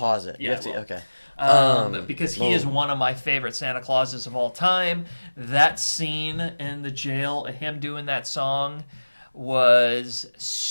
it. Yeah, okay. Because he is one of my favorite Santa Clauses of all time. That scene in the jail, him doing that song, was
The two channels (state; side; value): inverted; both; correlation -1.00